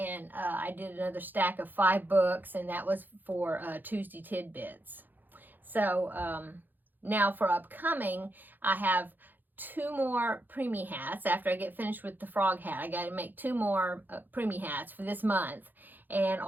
I did another stack of 5 books, and that was for Tuesday Tidbits. So now for upcoming, I have 2 more preemie hats. After I get finished with the frog hat, I got to make 2 more preemie hats for this month. And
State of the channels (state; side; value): late; left; 0.088 ms